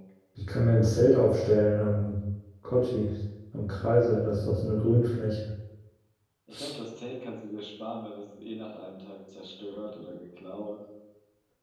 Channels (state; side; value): identical; both; correlation 1.00